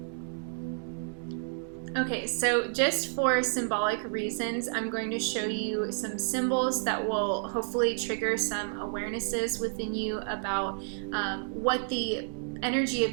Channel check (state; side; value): silent; left; 58 dB below the other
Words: Okay, so just for symbolic reasons, I'm going to show you some symbols that will hopefully trigger some awarenesses within you about what the energy of